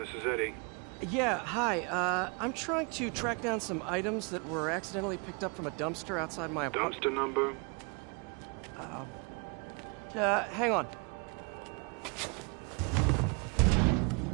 is Eddie. Yeah, hi. I'm trying to track down some items that were accidentally picked up from a dumpster outside my apartment. Dumpster number? Hang on.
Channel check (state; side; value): quieter; left; 33.9 dB